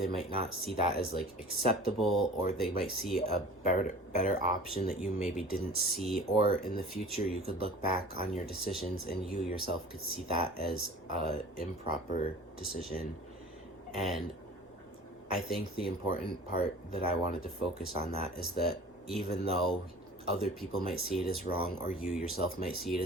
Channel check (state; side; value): normal; both; correlation 0.42